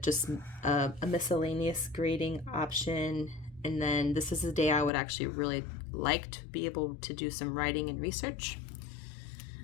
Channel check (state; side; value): drops out; right; at 4.9 s